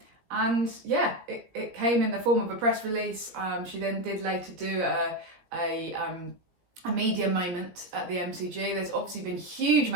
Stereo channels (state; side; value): late; left; 17 ms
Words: And yeah, it came in the form of a press release. She then did later do a media moment at the MCG. There's obviously been a huge